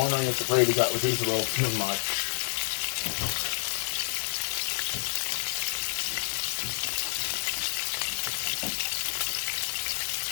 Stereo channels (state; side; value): silent; right; digital silence